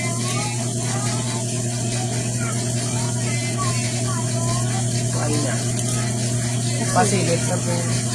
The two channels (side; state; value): both; identical; correlation 1.00